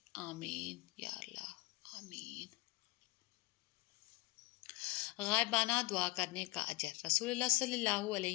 آمین یا اللہ، آمین۔ غائبانہ دعا کرنے کا اجر۔ رسول اللہ صلی اللہ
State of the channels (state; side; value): quieter; right; 22.1 dB